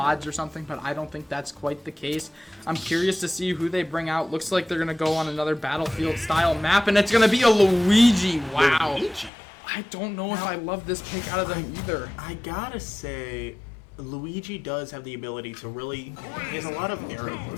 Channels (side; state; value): right; drops out; at 9.3 s